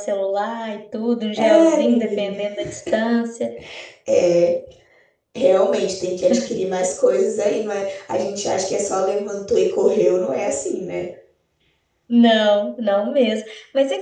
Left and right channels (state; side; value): identical; both; correlation 1.00